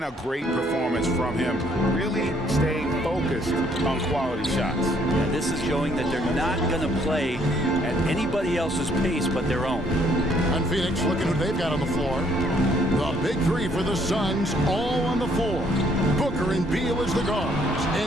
a great performance from him, really staying focused on quality shots. Yeah, this is showing that they're not going to play at anybody else's pace but their own. On Phoenix, looking who they've got on the floor. The big three for the Suns, all on the floor. Booker and Beal as the guards,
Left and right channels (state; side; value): normal; both; correlation 0.66